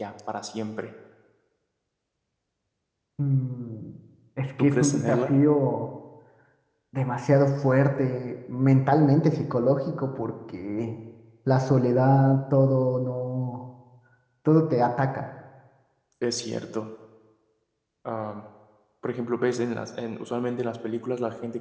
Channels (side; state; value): both; identical; correlation 1.00